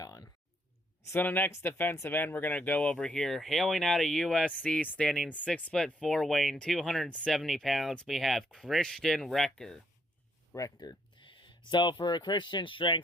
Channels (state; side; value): normal; both; correlation 0.72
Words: on. So the next defensive end we're going to go over here, hailing out of USC, standing 6'4", weighing 270 pounds, we have Christian Rector. So for Christian's